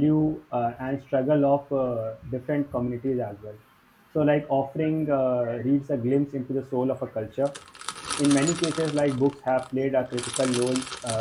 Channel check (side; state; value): both; identical; correlation 1.00